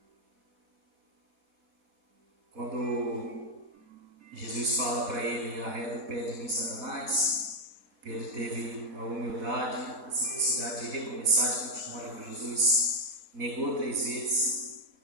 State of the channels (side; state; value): left; late; 4.1 ms